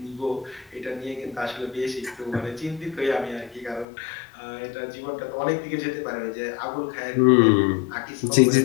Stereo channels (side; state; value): right; drops out; at 3.9 s